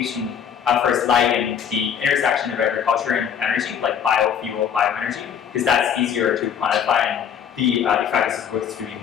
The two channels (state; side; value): quieter; right; 8.1 dB